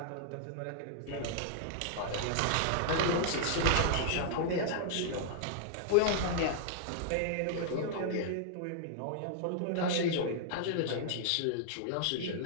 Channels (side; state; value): both; different; correlation -0.01